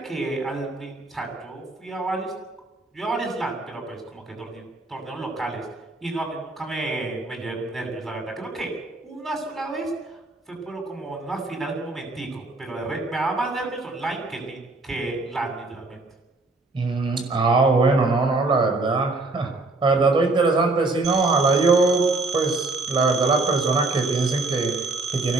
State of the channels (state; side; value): quieter; left; 3.3 dB